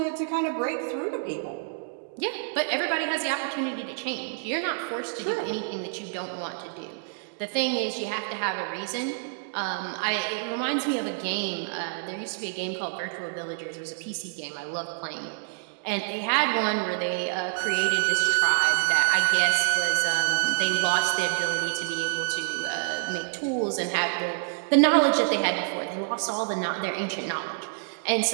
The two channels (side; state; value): left; silent; digital silence